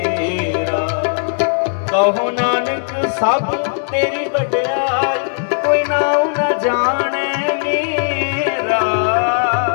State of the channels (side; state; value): right; silent; digital silence